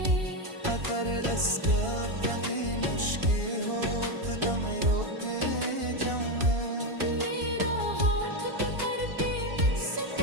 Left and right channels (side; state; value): left; late; 2.8 ms